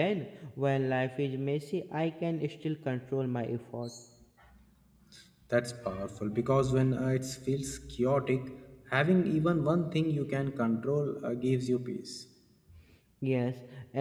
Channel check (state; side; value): identical; both; correlation 1.00